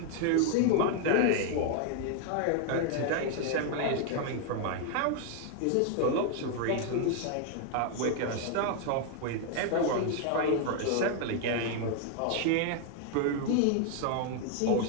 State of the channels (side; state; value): both; different; correlation 0.00